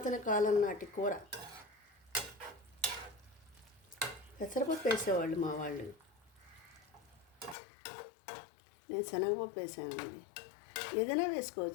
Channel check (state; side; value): drops out; right; at 7.6 s